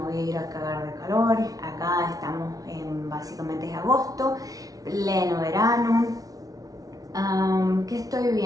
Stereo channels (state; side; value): late; left; 0.18 ms